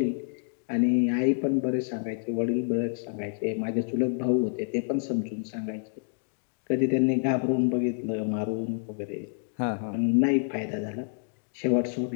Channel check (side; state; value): right; silent; digital silence